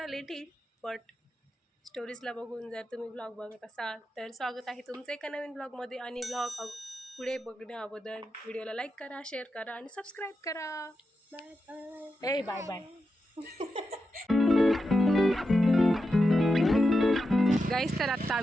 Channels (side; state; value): both; normal; correlation 0.88